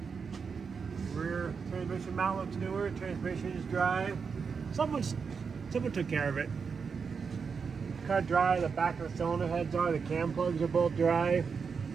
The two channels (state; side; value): quieter; left; 5.7 dB